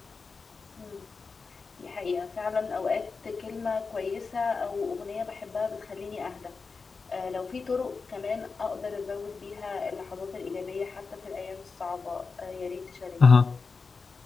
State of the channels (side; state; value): right; quieter; 4.7 dB